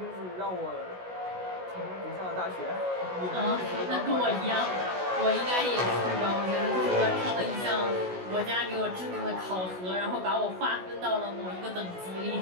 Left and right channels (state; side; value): late; left; 16 ms